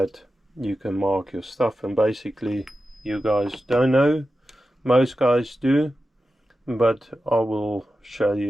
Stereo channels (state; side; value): normal; both; correlation 0.92